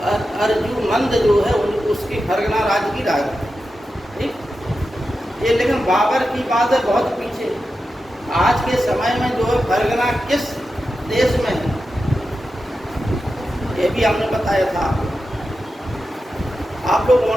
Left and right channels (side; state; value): both; normal; correlation 0.91